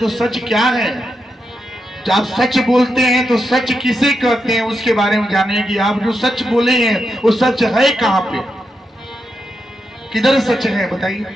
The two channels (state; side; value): normal; both; correlation 0.85